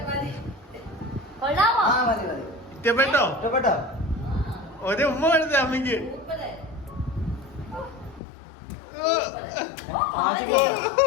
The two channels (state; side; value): drops out; right; at 8.2 s